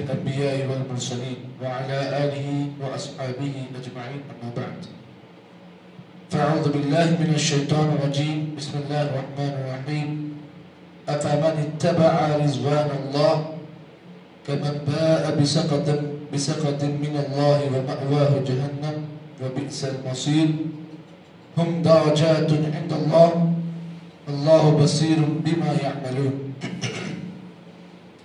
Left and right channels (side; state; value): both; identical; correlation 1.00